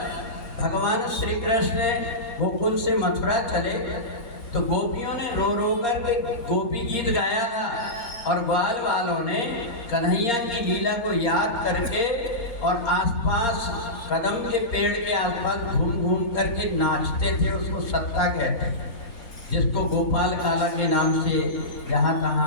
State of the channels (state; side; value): late; right; 4.3 ms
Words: भगवान श्री कृष्ण गोकुल से मथुरा चले तो गोपियों ने रो रो कर के गोपी गीत गाया था, और ग्वाल वालों ने कन्हैया की लीला को याद करके और आसपास कदम के पेड़ के आसपास घूम घूम करके नाचते थे। उसको सत्ता कहते हैं, जिसको गोपाल काला के नाम से जहाँ